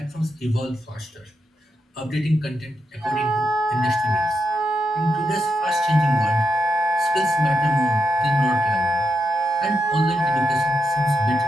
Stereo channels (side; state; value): both; normal; correlation 0.84